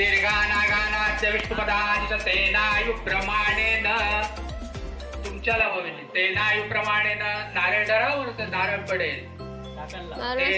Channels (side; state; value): both; identical; correlation 1.00